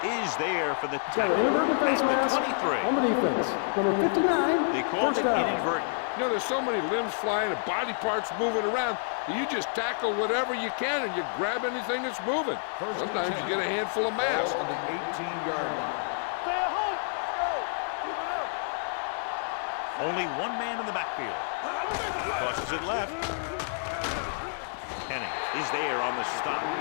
is there for the tackle at the 23. On the defense. Number 59. They called it inadvertent. You know, there's so many limbs flying and body parts moving around. You just tackle whatever you can and you grab anything that's moving. Sometimes you get a handful of mass. On the 18-yard line. Stay at home. Let's go. Keep it up. Only one man in the backfield. Tosses it left. Penning is there on the stop.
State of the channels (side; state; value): right; silent; digital silence